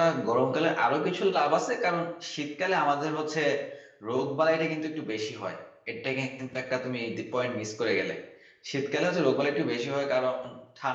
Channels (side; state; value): both; identical; correlation 1.00